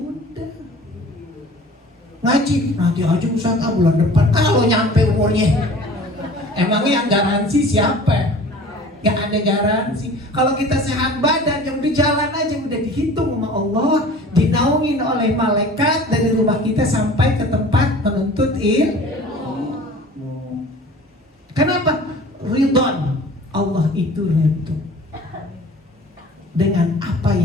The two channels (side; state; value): both; normal; correlation 0.44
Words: Ngaji nanti aja Ustaz, bulan depan kalau nyampe umurnya. Emangnya yang garansi siapa? Gak ada garansi. Kalau kita sehat badan, yang udah jalan aja, udah dihitung sama Allah, dinaungin oleh malaikat dari rumah kita sampai ke tempat menuntut ilmu. Kenapa? Ridwan. Allah itu ridho dengan apa